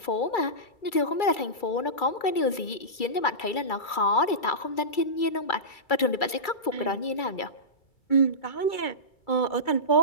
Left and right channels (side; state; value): right; late; 2.3 ms